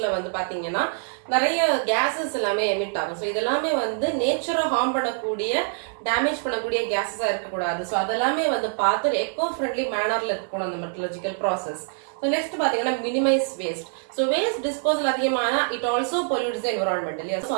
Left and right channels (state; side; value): silent; left; 62 dB below the other